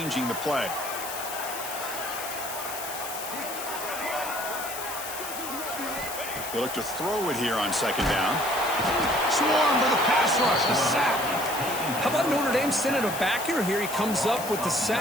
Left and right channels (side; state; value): left; noise; hiss, 8 dB below the sound